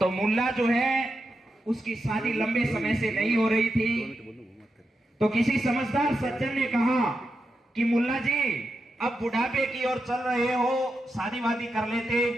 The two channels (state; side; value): normal; both; correlation 0.87